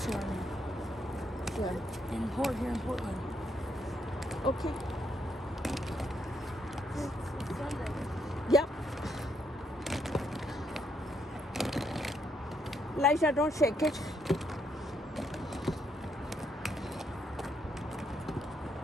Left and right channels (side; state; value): both; normal; correlation 0.75